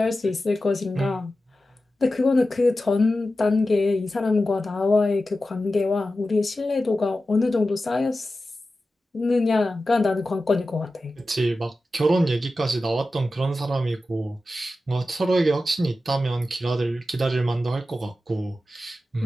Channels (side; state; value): both; normal; correlation 0.93